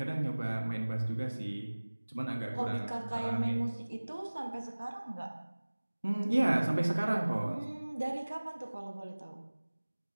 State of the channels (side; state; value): both; inverted; correlation -1.00